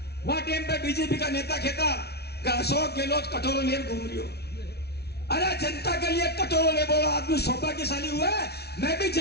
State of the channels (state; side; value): late; right; 0.48 ms